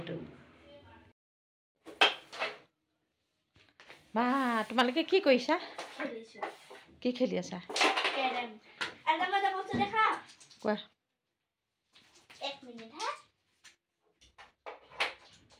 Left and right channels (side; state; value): both; identical; correlation 1.00